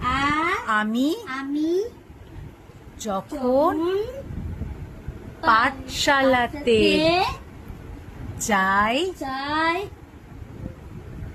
আমি আমি যখন পাঠশালাতে যাই চাই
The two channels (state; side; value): identical; both; correlation 1.00